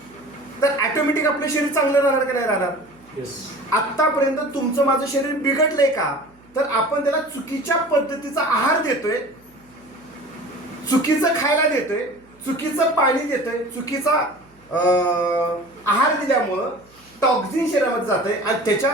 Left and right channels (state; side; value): noise; right; hum, 30 dB below the sound